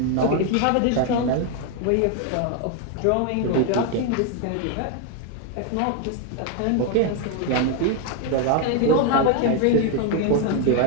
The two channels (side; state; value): both; different; correlation 0.01